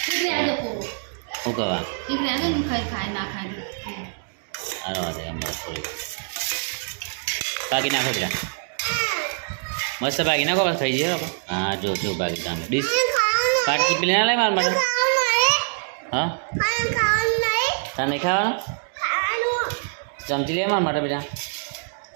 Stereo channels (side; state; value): left; silent; digital silence